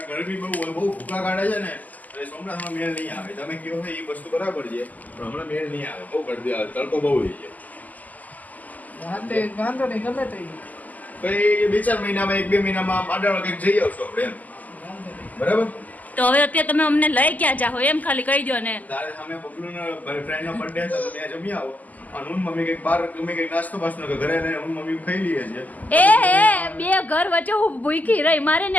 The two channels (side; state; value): right; late; 0.079 ms